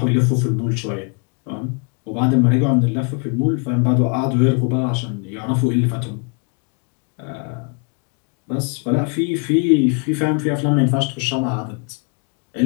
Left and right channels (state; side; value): quieter; right; 36.6 dB